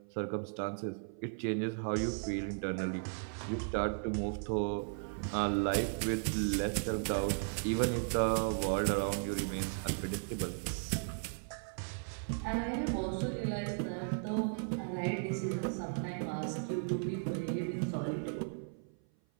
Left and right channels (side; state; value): left; silent; 54 dB below the other